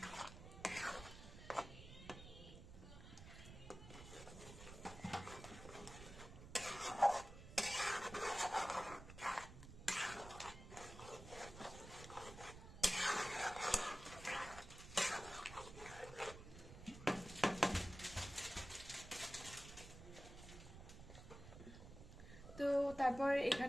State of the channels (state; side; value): noise; right; rumble, 14 dB below the sound